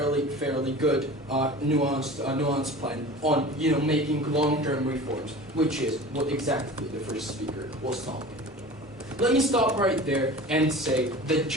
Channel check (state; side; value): normal; both; correlation 0.38